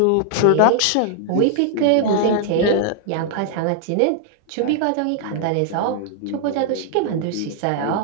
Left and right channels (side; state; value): both; different; correlation 0.00